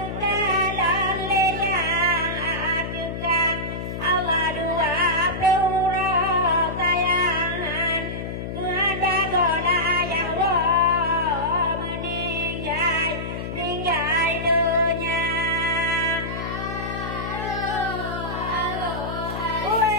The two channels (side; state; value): left; noise; hum, 6 dB below the sound